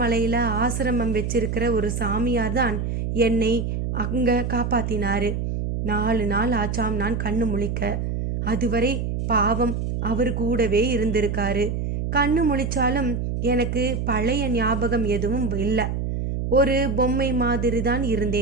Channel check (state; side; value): noise; right; hum, 2 dB below the sound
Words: ஆசிரமம் வச்சிருக்கிற ஒரு சாமியார் தான் என்னை அங்கே காப்பாத்தினாரு. 4 நாள் ஆச்சாம் நான் கண்ணு முழிக்க. அதுவரை பாவம் அவர் கூடவே இருந்திருக்காரு. கண்ணு முழிச்சாலும் எனக்கு பழைய ஞாபகம் எதுவும் இல்லை. ஒரு பொம்மை மாதிரி தான்